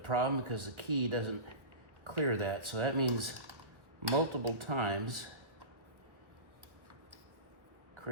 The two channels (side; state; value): left; late; 1.5 ms